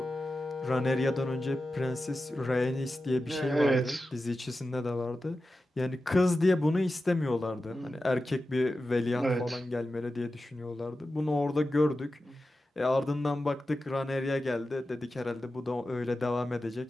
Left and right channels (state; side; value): normal; both; correlation 0.93